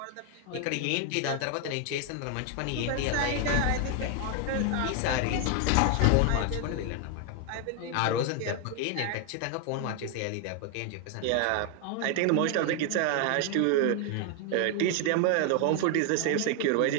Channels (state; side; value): different; both; correlation 0.00